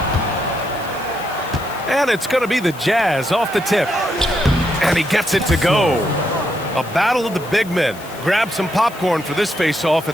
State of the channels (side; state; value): left; noise; hiss, 19 dB below the sound